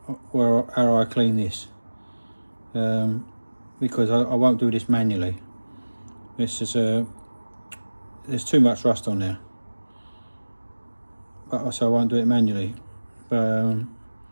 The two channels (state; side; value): inverted; both; correlation -1.00